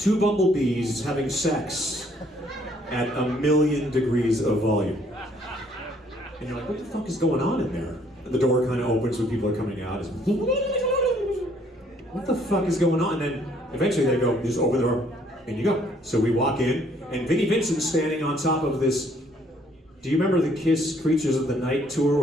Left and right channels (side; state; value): both; normal; correlation 0.64